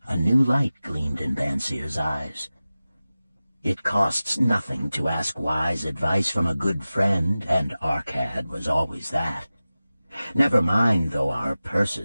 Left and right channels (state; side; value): inverted; both; correlation -0.96